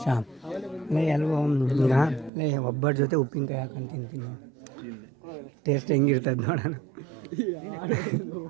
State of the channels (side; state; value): left; drops out; at 2.3 s